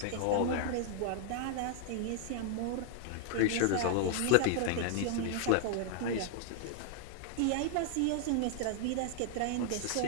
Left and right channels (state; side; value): different; both; correlation 0.00